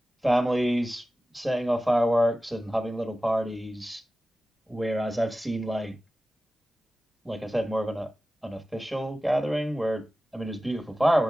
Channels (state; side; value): normal; both; correlation 0.95